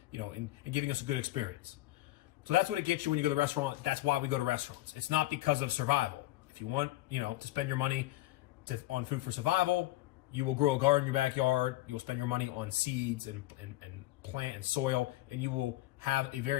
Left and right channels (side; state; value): right; quieter; 16.8 dB